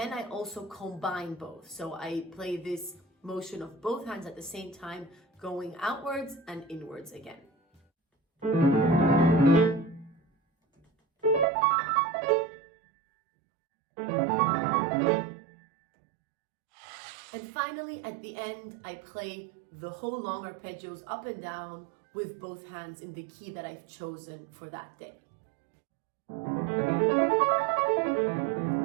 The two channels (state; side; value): drops out; left; at 11.5 s